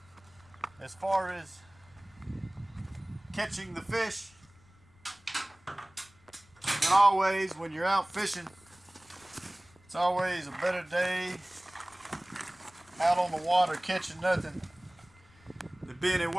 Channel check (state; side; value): noise; left; rumble, 28 dB below the sound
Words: as far as catching the fish. And always, when you're out fishing, it's always a better day out on the water catching nothing than being at